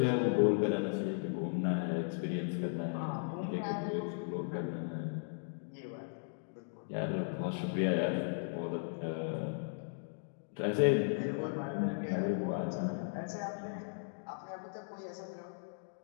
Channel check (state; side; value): silent; right; digital silence